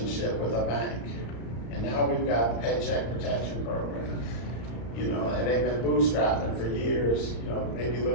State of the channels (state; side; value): late; right; 34 ms